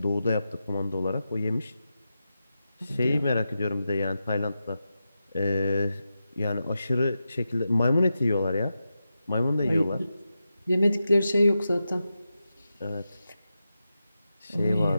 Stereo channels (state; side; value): inverted; both; correlation -0.90